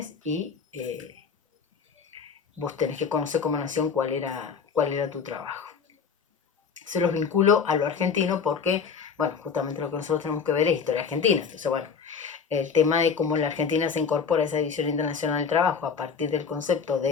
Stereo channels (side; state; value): right; quieter; 6.1 dB